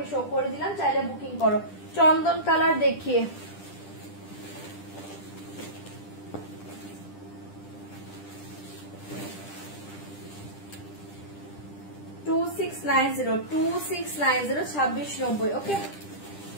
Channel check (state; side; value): late; right; 10 ms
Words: শো করে দিলাম। চাইলে বুকিং করো। চন্দন কালার দেখিয়ে। 2690, 2690, 2690। ওকে